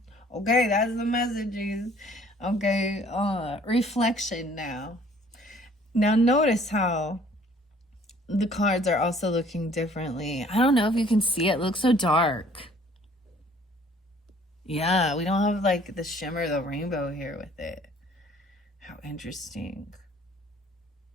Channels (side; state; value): both; normal; correlation 0.57